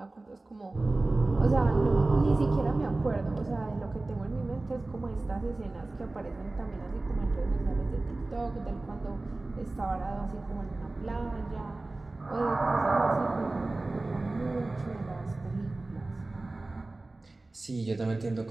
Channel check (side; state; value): left; quieter; 3.0 dB